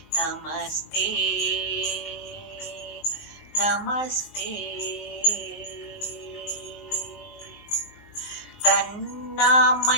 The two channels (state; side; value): late; right; 19 ms